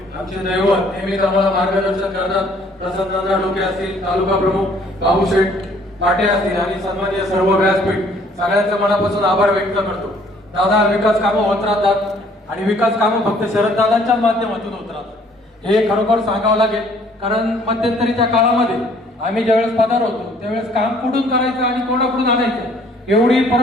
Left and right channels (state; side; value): normal; both; correlation 0.60